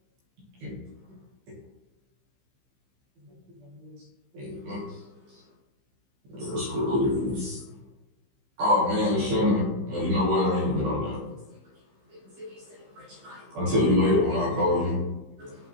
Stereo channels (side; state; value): left; late; 15 ms